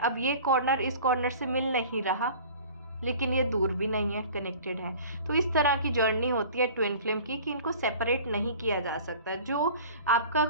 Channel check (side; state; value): both; inverted; correlation -0.43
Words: ये कॉर्नर इस कॉर्नर से मिल नहीं रहा, लेकिन ये दूर भी नहीं है, कनेक्टेड है। तो इस तरह की जर्नी होती है ट्विन फ्लेम की कि इनको सेपरेट नहीं किया जा सकता। जो आपका